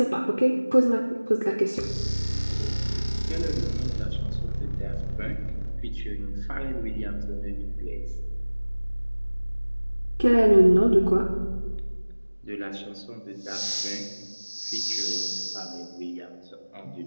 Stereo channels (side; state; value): both; inverted; correlation -1.00